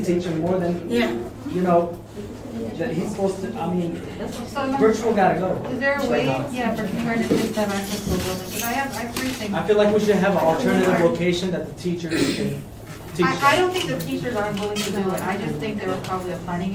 teach him more than, that he's supposed to, virtual gotta go. Is there a way, for kindergarten kids to have access to a building? Because I have 3 things. I feel like we should have an alternative location that the teachers can teach. I don't think the teachers aren't willing to do it, I just think there was probably a planning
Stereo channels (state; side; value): identical; both; correlation 1.00